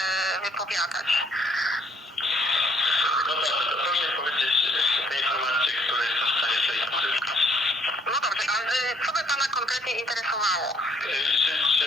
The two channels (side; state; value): both; normal; correlation 0.64